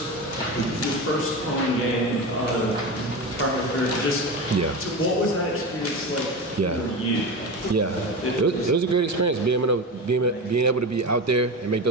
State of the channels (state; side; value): normal; both; correlation 0.23